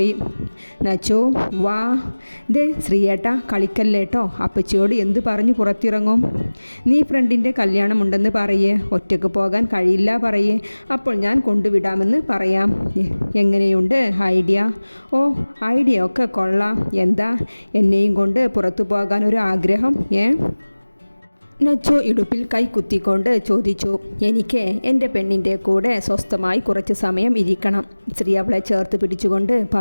നച്ചു, വാ. ദേ ശ്രീയേട്ട, കളിക്കല്ലേട്ടോ. അപ്പച്ചിയോട് എന്ത് പറഞ്ഞു പുറത്തിറങ്ങും? നീ ഫ്രണ്ടിൻ്റെ കല്യാണമുണ്ടെന്ന് പറയേ. ഒറ്റയ്ക്ക് പോകാൻ കഴിയില്ല പറയേ. അപ്പോൾ ഞാൻ കൊണ്ടുവിടാമെന്ന് പറയാം. എങ്ങനെയുണ്ട് ഐഡിയ? ഓ, ഐഡിയ ഒക്കെ കൊള്ളാം. എന്താ എന്നെയും കൊണ്ട് പുറത്തു പോകാൻ ഒരു ആഗ്രഹം? നച്ചു ഇടുപ്പിൽ കൈ കുത്തിക്കൊണ്ട് ചോദിച്ചു. എനിക്ക് എൻ്റെ പെണ്ണിൻ്റെ കൂടെ സ്വസ്ഥമായി കുറച്ച് സമയം ഇരിക്കണം. ശ്രീ അവളെ ചേർത്ത് പിടിച്ചുകൊണ്ട്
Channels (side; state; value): both; inverted; correlation -1.00